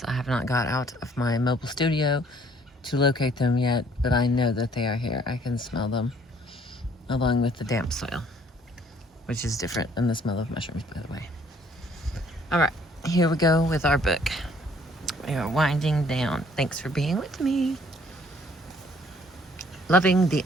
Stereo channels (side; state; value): both; normal; correlation 0.60